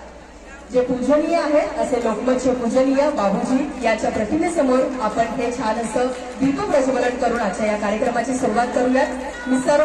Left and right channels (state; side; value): identical; both; correlation 1.00